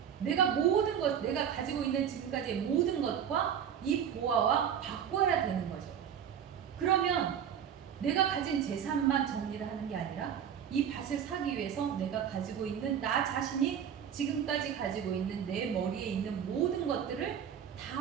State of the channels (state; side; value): quieter; left; 8.6 dB